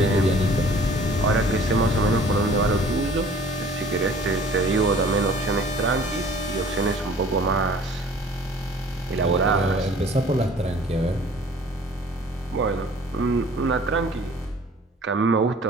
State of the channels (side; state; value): both; normal; correlation 0.50